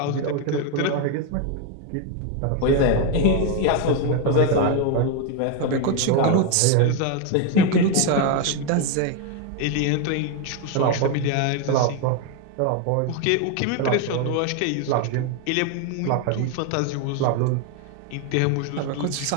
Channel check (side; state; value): both; different; correlation 0.01